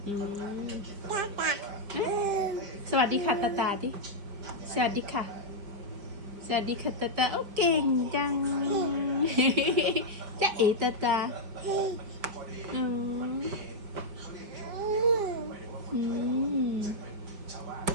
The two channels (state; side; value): late; left; 5.0 ms